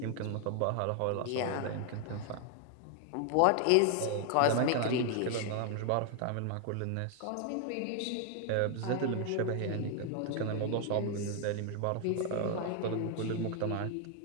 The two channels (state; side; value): different; both; correlation 0.00